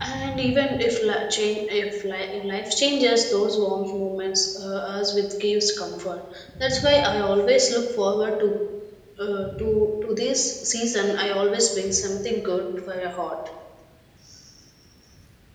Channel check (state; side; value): identical; both; correlation 1.00